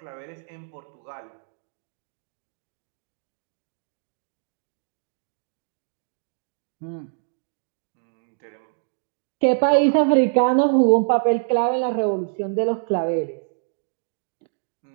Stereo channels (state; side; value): silent; left; 62 dB below the other